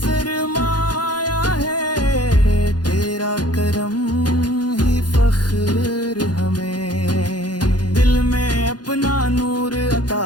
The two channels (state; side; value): late; right; 0.69 ms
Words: है। तेरा करम ही फख्र हमें। दिल में अपना नूर अता